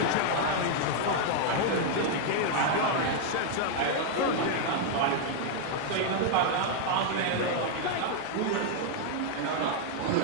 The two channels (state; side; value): different; both; correlation 0.00